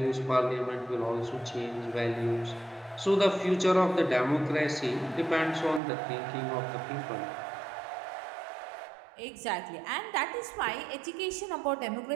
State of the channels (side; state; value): left; drops out; at 5.8 s